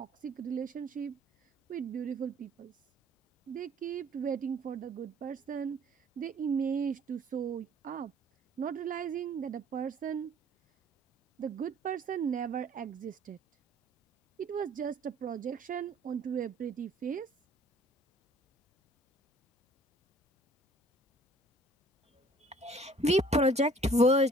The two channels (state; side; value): normal; both; correlation 0.54